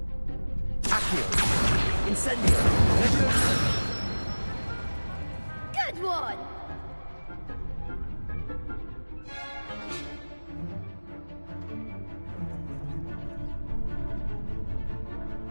Accio! Incendio! Good one!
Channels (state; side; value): inverted; both; correlation -1.00